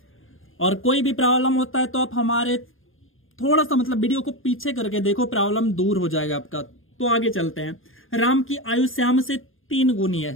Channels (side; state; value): right; late; 0.59 ms